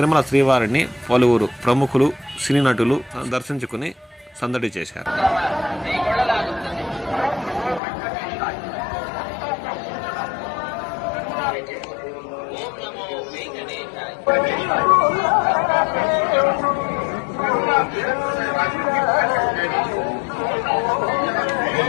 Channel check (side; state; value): right; drops out; at 7.8 s